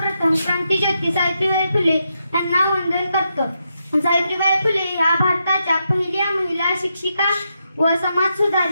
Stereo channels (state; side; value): inverted; both; correlation -0.83